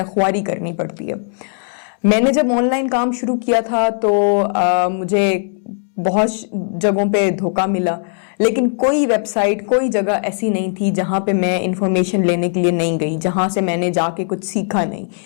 ख्वारी करनी पड़ती है। मैंने जब ऑनलाइन काम शुरू किया था तो मुझे بہت جگہوں پہ دھوکہ ملا، لیکن کوئی ویب سائٹ، کوئی جگہ ایسی نہیں تھی جہاں پہ میں انفارمیشن لینے کے لیے نہیں گئی، جہاں سے میں نے جا کے کچھ سیکھا نہیں۔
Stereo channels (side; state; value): right; silent; 67 dB below the other